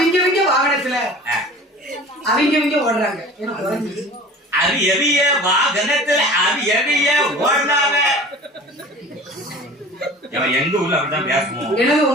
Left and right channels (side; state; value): both; normal; correlation 0.42